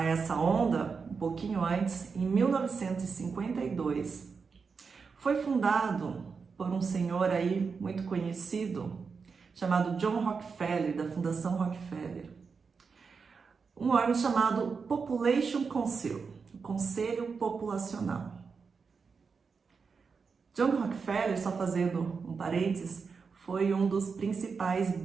essa onda, um pouquinho antes, em 1952, foi fundado por um senhor aí muito conhecido, chamado John Rockefeller, da Fundação Rockefeller, um órgão chamado Population Council, o Conselho Populacional. John Rockefeller, só fazendo um parênteses, foi um dos principais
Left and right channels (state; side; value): quieter; left; 5.3 dB